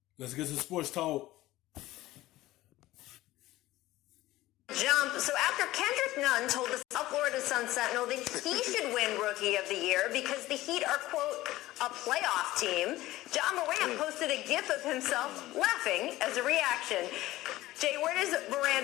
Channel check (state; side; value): quieter; right; 16.8 dB